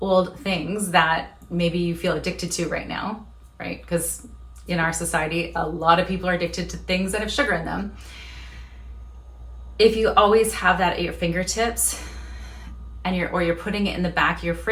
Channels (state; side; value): identical; both; correlation 1.00